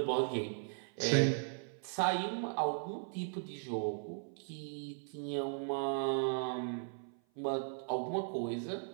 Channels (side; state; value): left; silent; 53 dB below the other